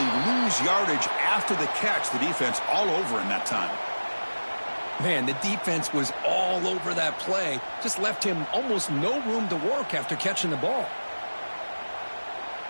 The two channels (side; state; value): both; inverted; correlation -1.00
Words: lose yardage after the catch. The defense all over him that time. Man, the defense was all over that play. Just left him almost no room to work after catching the ball.